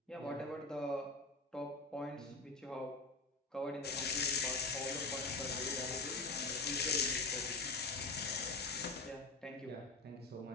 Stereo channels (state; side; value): quieter; right; 3.6 dB